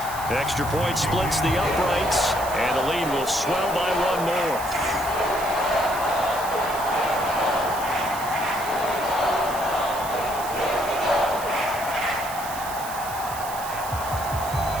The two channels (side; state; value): right; noise; hiss, 11 dB below the sound